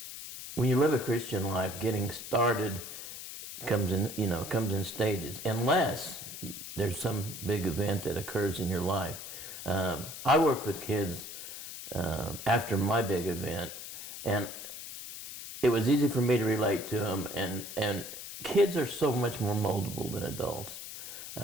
when you live a Christian life, getting started comes in stages, unless there's some big event that occurs in your life. I worked with kids after my big event, and it was easy for me to relate to them, and kids are so much more moldable than adults.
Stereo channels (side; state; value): left; noise; hiss, 10 dB below the sound